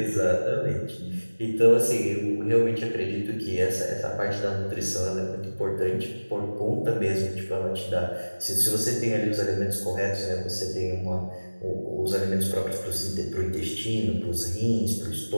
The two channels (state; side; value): inverted; both; correlation -1.00